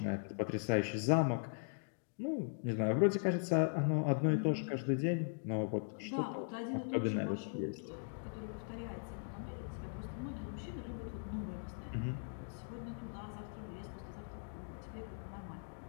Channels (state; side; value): silent; right; digital silence